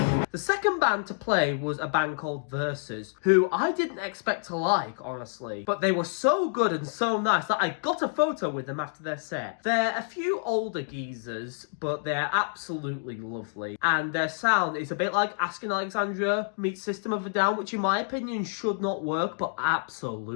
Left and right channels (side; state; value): right; silent; digital silence